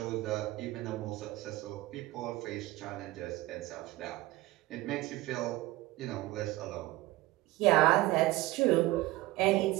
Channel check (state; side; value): quieter; left; 18.4 dB